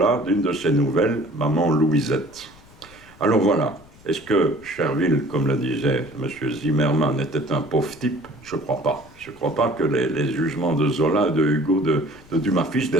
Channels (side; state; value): left; noise; rumble, 24 dB below the sound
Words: d'une de ses nouvelles, Maman Louisette. Alors voilà, est-ce que Chervil, comme le disait M. Zimmermann, était un pauvre type? Je ne crois pas. Je ne crois pas que les jugements de Zola, de Hugo, de Dumas fils,